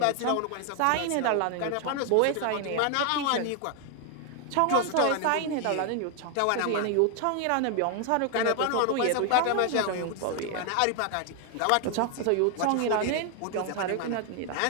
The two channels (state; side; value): different; both; correlation 0.00